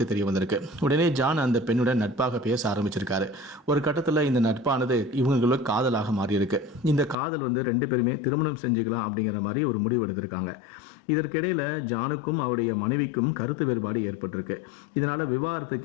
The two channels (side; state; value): right; drops out; at 7.2 s